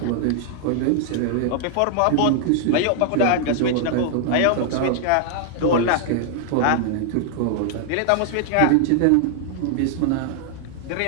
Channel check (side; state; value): both; different; correlation 0.00